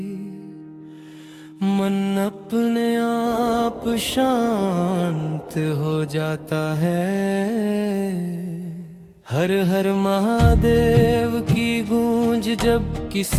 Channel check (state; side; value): identical; both; correlation 1.00